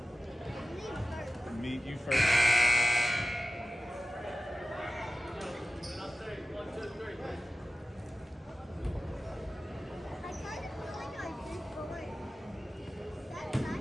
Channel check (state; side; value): normal; both; correlation 0.95